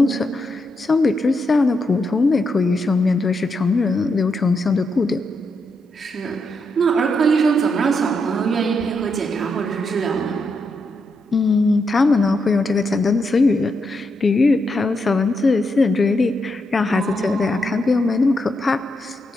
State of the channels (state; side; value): normal; both; correlation 0.82